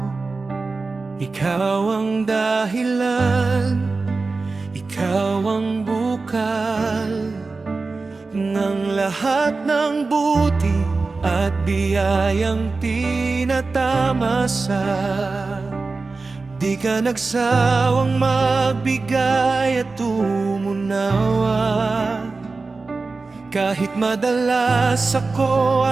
ikaw ang dahilan, ikaw ang bukal ng lahat ng buti at biyayang tinatamasa. Di ka nagsawang magbigay at umunawa, kahit madalas ako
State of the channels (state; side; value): quieter; left; 3.9 dB